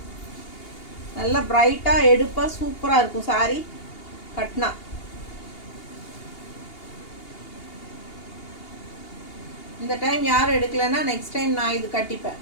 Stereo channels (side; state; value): right; late; 2.8 ms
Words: நல்லா பிரைட்டாக எடுப்பாக சூப்பராக இருக்கும் சாரி கட்னா. இந்த டைம் யாரும் எடுக்கலைன்னா நெக்ஸ்ட் டைம் நான் இது கட்டிப்பேன்.